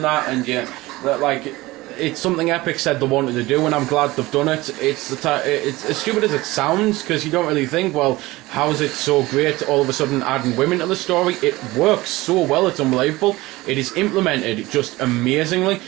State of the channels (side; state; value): left; quieter; 19.7 dB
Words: that, and it's something Epic said they wanted to do, and I'm glad they've done it. It's as stupid as it sounds, because you don't really think, well, how is it so great all of a sudden adding women to the story? It works so well, it's unbelievable. It is implemented just amazingly,